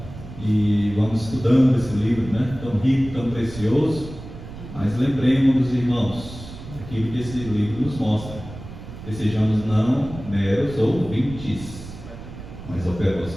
E vamos estudando esse livro, né? Tão rico, tão precioso, mas lembremos dos irmãos, aquilo que esse livro nos mostra, que sejamos não meros ouvintes, mas operosos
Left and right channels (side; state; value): right; noise; rumble, 13 dB below the sound